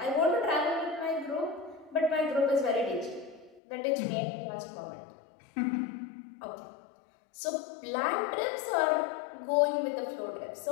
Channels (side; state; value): right; drops out; at 3.6 s